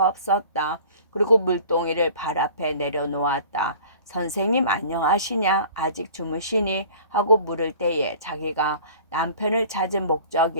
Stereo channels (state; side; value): inverted; both; correlation -0.46